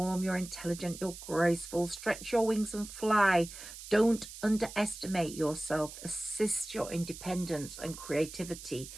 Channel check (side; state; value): right; noise; hiss, 13 dB below the sound